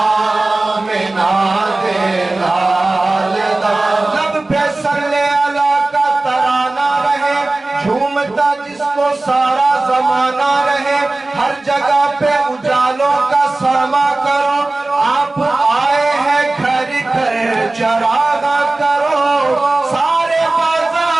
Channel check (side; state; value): left; quieter; 3.0 dB